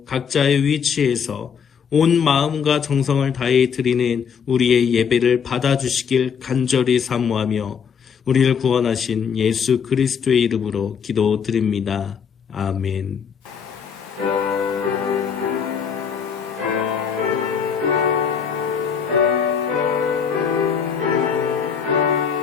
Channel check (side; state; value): right; quieter; 7.0 dB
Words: 각자의 위치에서 온 마음과 정성을 다해 드리는 우리의 예배를 받아주시길 간절히 사모하며 우리를 구원하신 예수 그리스도의 이름으로 기도드립니다. 아멘.